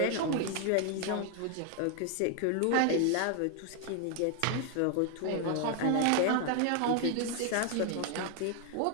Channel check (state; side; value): different; both; correlation 0.00